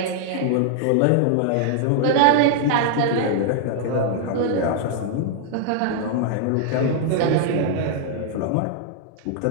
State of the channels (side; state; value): both; different; correlation 0.00